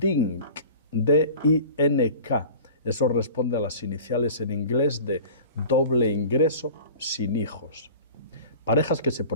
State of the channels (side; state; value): both; inverted; correlation -0.41